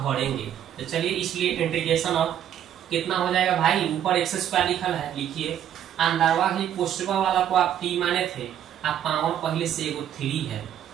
भरेंगे। तो चलिए इसलिए इंटीग्रेशन ऑफ कितना हो जाएगा भाई, ऊपर x² लिखल है, लिखिए अंदरवा ही पोस्टवा वाला को आप t माने थे, आप पावर पहले से एगो 3 है,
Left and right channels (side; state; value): left; quieter; 10.3 dB